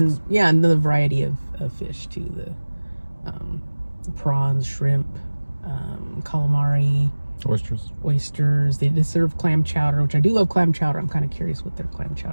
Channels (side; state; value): both; inverted; correlation -1.00